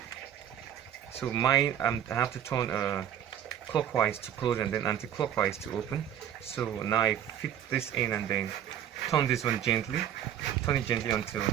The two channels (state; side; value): quieter; left; 10.0 dB